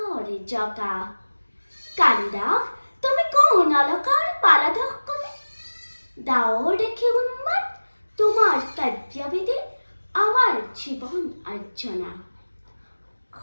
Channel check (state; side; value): inverted; both; correlation -1.00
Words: জকা কালিদাস তুমি কোন অলকাৰ পালাধক কবি ডাৱৰ দেখি উন্মাদ তোমাৰ কাৰ্যবিধি আমাৰ জীৱন আৰ্জনা